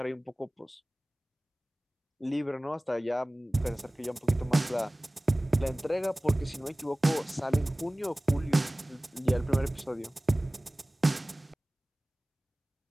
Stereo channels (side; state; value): both; normal; correlation 0.98